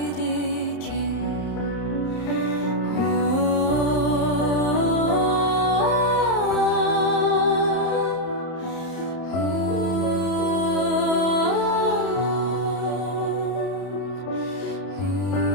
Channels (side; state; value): right; late; 31 ms